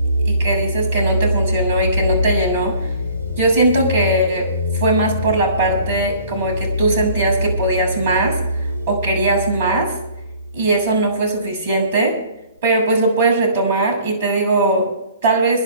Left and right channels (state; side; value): inverted; both; correlation -0.53